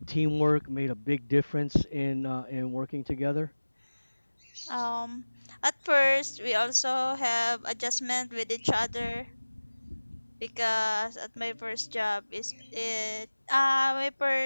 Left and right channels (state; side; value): inverted; both; correlation -1.00